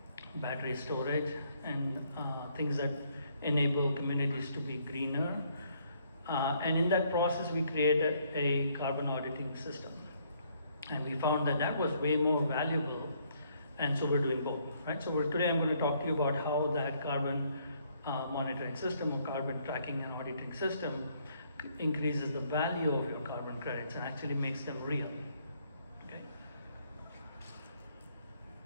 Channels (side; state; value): both; inverted; correlation -0.68